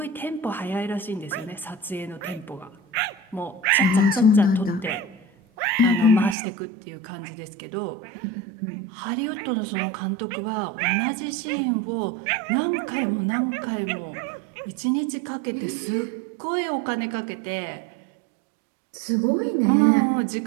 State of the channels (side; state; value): left; drops out; at 6.4 s